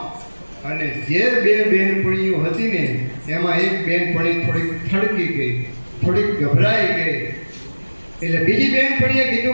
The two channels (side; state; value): both; inverted; correlation -1.00